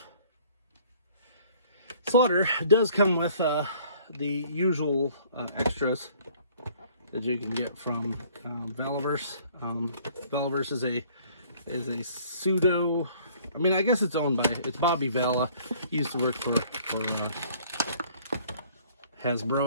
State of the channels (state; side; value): inverted; both; correlation -0.56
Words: Slaughter does come with the usual extras that you can get from Valaverse. Valaverse is a pseudo. I mean, I guess it's owned by Bobby Vala. He used to work for